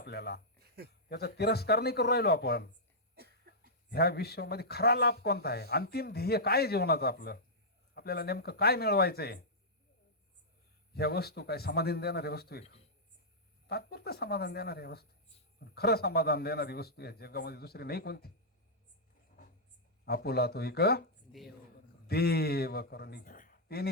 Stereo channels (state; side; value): normal; both; correlation -0.11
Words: त्याचा तिरस्कार नाही करू राहिलो आपण. ह्या विश्वामध्ये खरा लाभ कोणता आहे? अंतिम ध्येय काय जीवनाचं आपलं? आपल्याला नेमकं काय मिळवायचंय? ह्या वस्तू काय समाधान देणाऱ्या वस्तू आहे? तात्पुरतं समाधान देणाऱ्या वस्तू. खरं समाधान देणारी वस्तू या जगामध्ये दुसरी नाही कोणती. आपुला तो एक देव करुणी